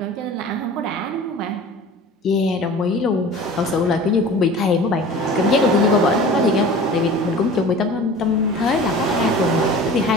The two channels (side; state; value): both; normal; correlation 0.40